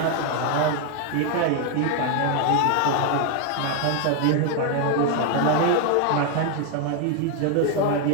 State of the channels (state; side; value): different; both; correlation 0.01